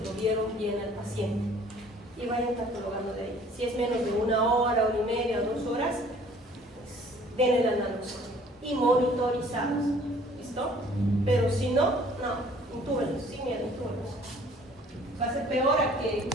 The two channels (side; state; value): both; normal; correlation 0.55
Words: lo vieron bien al paciente? Y vayan catalogando de ahí. Si es menos de 1 hora, 1 hora y media, 2 horas, pues denle la naloxona y monitorizados. ¿Listo? Pero si no, intúbenlos, sin miedo, intúbenlos. Va a ser peor a que